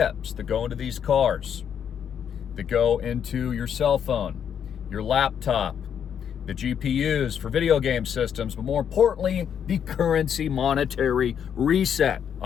that go into these cars, that go into your cell phone, your laptop, the GPUs for video game systems, but more importantly, the currency monetary reset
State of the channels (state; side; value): quieter; right; 8.3 dB